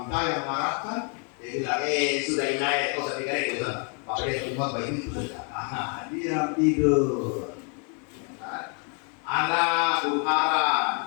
kita yang mengarahkan, Dia bilang, sudah inai, kau saya pikir gitu. Pakai rumah baik itu sudah. Dia tidur. Ya kan? Anak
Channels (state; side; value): quieter; right; 38.9 dB